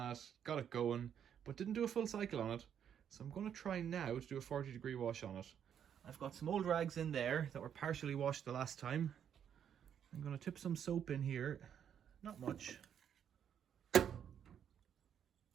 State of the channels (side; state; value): left; quieter; 8.8 dB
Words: got it going, but didn't do a full cycle on it, so I'm going to try now to do a 40-degree wash on it. I've got some old rags in there that were partially washed the last time. I'm going to tip some soap in here, not much,